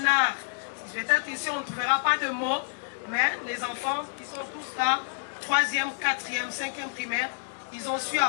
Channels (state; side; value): silent; right; digital silence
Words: art. Peut-être ici on ne trouvera pas de mots, mais les enfants, ils sont tous là, 3e, 4e, 5e primaire, ils ont su